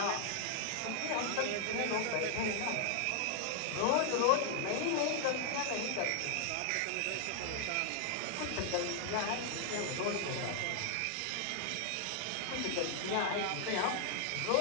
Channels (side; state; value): both; different; correlation 0.00